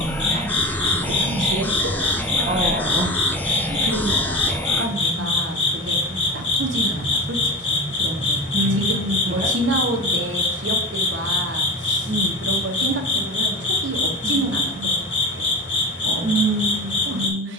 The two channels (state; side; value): normal; both; correlation 0.28